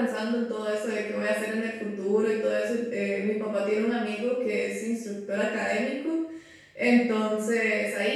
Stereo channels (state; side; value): identical; both; correlation 1.00